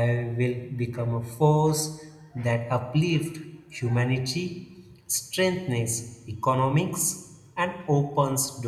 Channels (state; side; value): identical; both; correlation 1.00